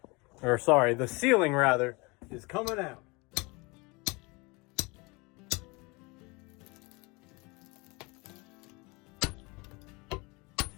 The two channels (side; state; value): right; quieter; 26.6 dB